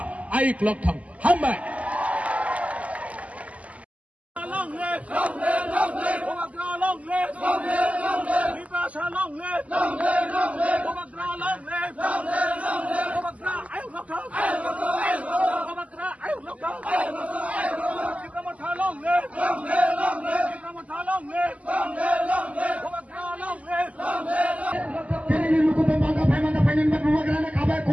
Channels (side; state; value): left; late; 0.069 ms